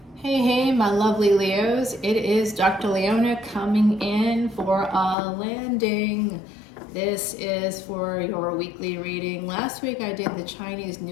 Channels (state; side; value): drops out; right; at 5.2 s